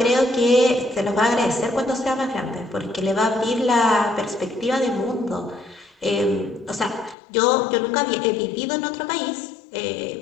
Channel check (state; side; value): drops out; right; at 7.2 s